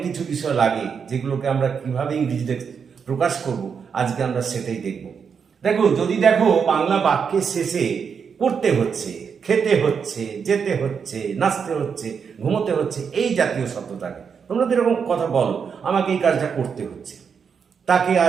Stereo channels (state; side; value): quieter; left; 6.5 dB